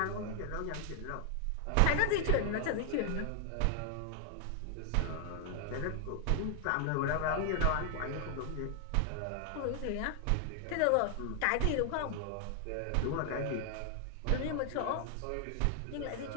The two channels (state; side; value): different; both; correlation 0.00